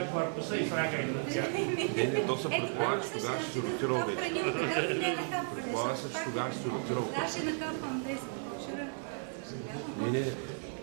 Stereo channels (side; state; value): left; silent; 55 dB below the other